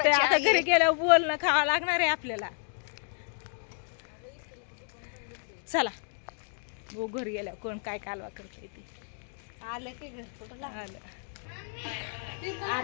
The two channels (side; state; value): right; silent; 57 dB below the other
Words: घरी गेल्यावर बोलणं खावं लागणार आहे आपल्याला. चला हो घरी गेल्यावर कोण काय कालवा करते ती. आलं की घर कुठं आलं.